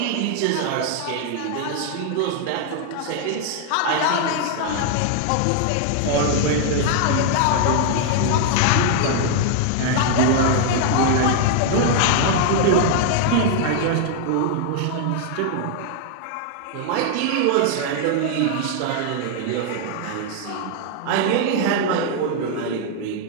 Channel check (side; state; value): both; different; correlation 0.00